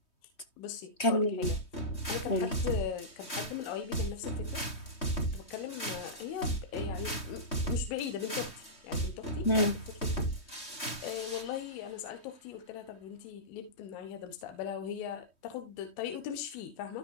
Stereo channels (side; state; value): right; late; 3.2 ms